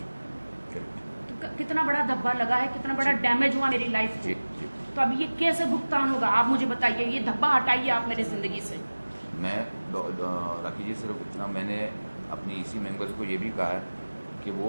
तो कितना बड़ा धब्बा लगा है, कितना बड़ा डैमेज हुआ मेरी लाइफ को। तो अब ये कैसे भुगतान होगा? आप मुझे बताइए, ये धब्बा हटाइए आप मेरी जिंदगी से। मैं राखी जी सिर्फ इतना, मैंने अपनी EC मेंबर्स को ये भी कहा है कि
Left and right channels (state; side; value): inverted; both; correlation -1.00